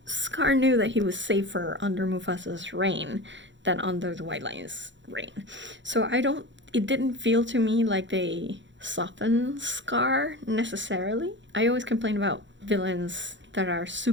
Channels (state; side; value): late; left; 0.54 ms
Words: Scar knew that he was safer under Mufasa's reign than under the White Lion's reign. So it didn't feel to me like they softened Scar necessarily. I always complain about villains that are